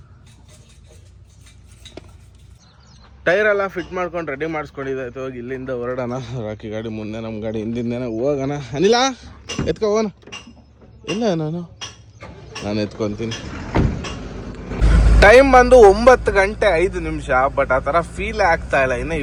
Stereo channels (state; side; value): identical; both; correlation 1.00